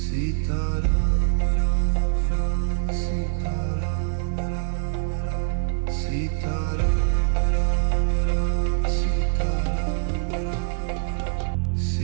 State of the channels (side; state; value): left; silent; 63 dB below the other